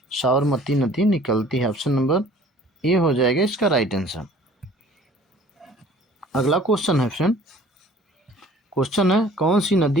साबरमती नदी निकलती है। ऑप्शन नंबर ए हो जाएगा इसका राइट आंसर। अगला क्वेश्चन है फ्रेंड, क्वेश्चन है, कौन सी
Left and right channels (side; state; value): both; normal; correlation 0.51